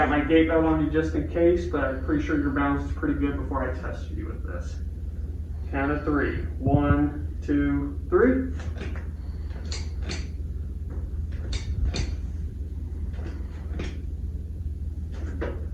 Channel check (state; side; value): identical; both; correlation 1.00